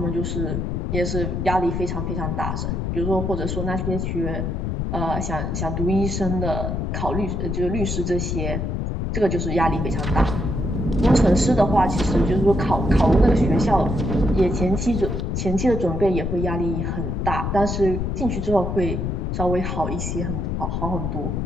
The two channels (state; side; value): noise; left; rumble, 1 dB below the sound